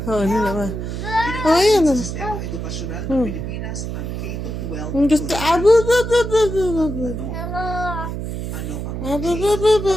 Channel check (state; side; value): noise; right; hum, 5 dB below the sound